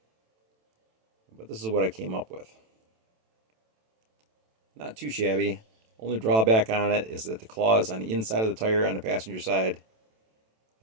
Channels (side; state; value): left; late; 27 ms